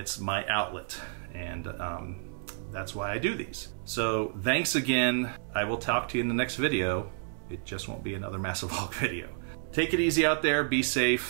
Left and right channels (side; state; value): left; silent; digital silence